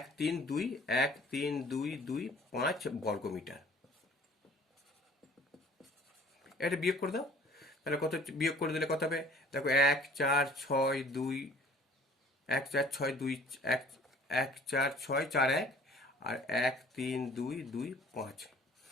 3 2 1 3 2 2 5 বর্গমিটার। এটা বিয়োগ করে দাও, তাহলে কত বিয়োগ করে দিলে কত হবে? দেখো 1 4 6 2 1 4 6 2 1 1 4 6 4 1 আর 1 3 2 2 5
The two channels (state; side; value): normal; both; correlation 0.51